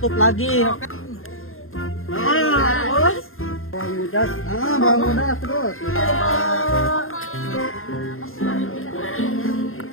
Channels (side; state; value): right; late; 0.61 ms